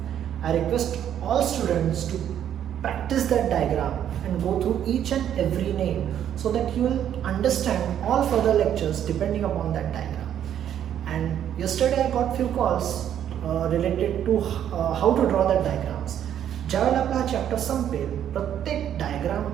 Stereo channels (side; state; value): left; quieter; 10.0 dB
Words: I request all students to practice that diagram and go through each and every name so that you will understand all further lectures depending upon that diagram. And yesterday I got few calls related to how to draw that diagrams. ज्यावेळेला आपला हा चॅप्टर संपेल प्रत्येक